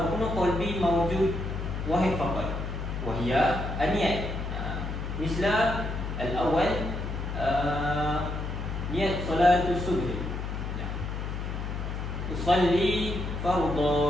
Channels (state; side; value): noise; left; hum, 4 dB below the sound